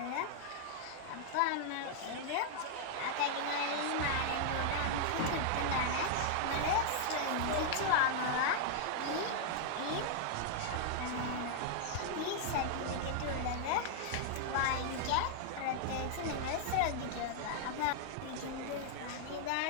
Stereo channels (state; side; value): different; both; correlation 0.00